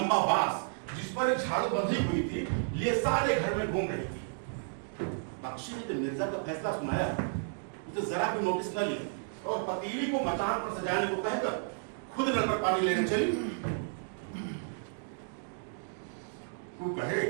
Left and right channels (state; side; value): silent; left; digital silence